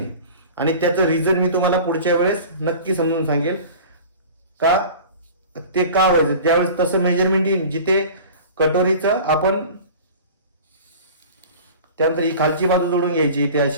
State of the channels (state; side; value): inverted; both; correlation -0.40